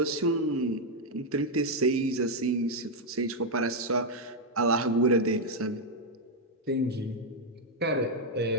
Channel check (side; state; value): both; normal; correlation 0.00